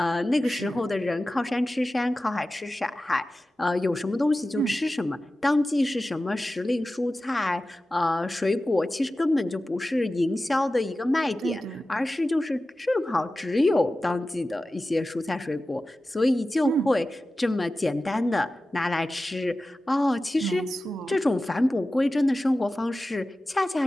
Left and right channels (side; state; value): both; normal; correlation 0.95